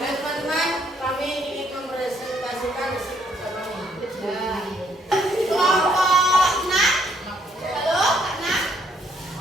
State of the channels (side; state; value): both; normal; correlation 0.69